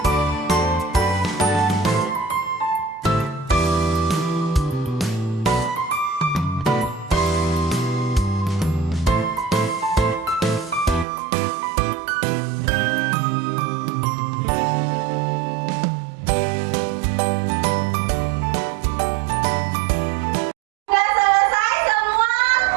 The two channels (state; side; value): drops out; left; at 11.1 s